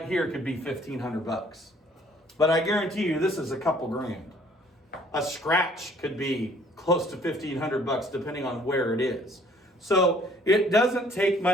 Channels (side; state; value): both; normal; correlation 0.58